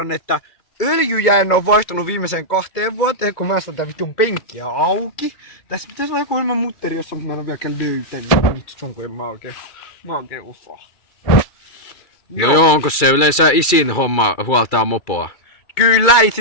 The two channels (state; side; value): late; right; 2.3 ms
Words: että öljyjä en oo vaihtanut viimeiseen 2 vuoteen, kun mä saan tää vitun penkkiä auki. Tässä pitäisi olla joku ilman mutteri, jossa mä en oo vieläkään löytänyt. Vittu, kun mä oikein osaa. No joo, onko se yleensä isin homma huoltaa mopoa? Kyllä